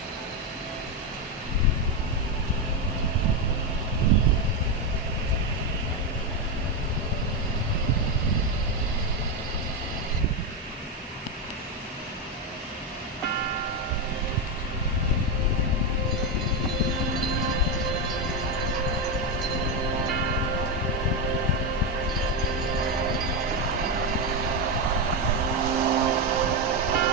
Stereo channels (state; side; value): normal; both; correlation 0.08